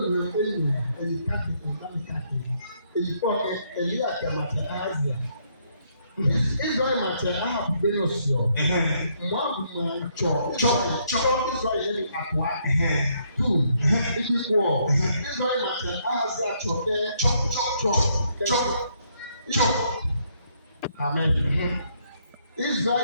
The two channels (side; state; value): both; inverted; correlation -0.71